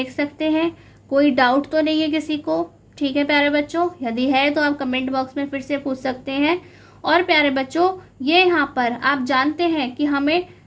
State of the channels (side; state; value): both; identical; correlation 1.00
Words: सकते हैं। कोई डाउट तो नहीं है किसी को? ठीक है प्यारे बच्चों, यदि है तो आप कमेंट बॉक्स में फिर से पूछ सकते हैं। और प्यारे बच्चों ये यहाँ पर आप जानते हैं कि हमें